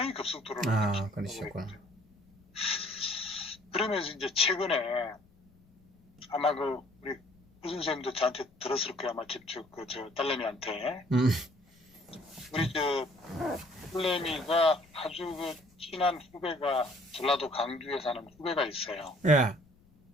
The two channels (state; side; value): noise; left; rumble, 30 dB below the sound